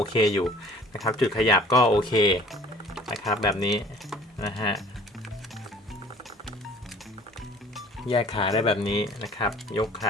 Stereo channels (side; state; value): both; normal; correlation 0.50